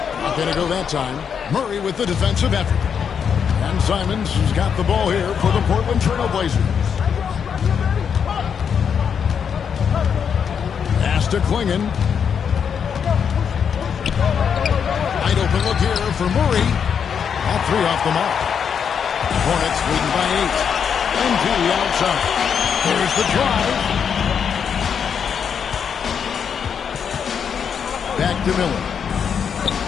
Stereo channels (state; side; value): quieter; right; 7.2 dB